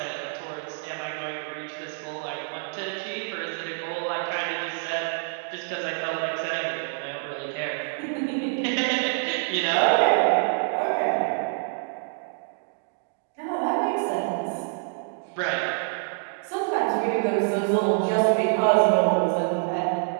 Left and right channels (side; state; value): left; silent; digital silence